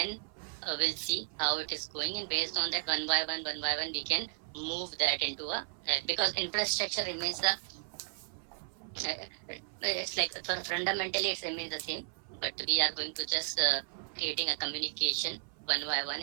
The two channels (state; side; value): silent; left; 55 dB below the other